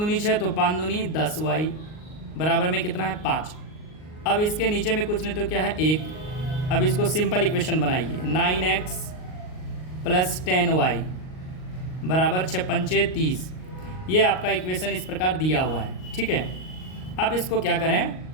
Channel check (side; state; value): right; late; 38 ms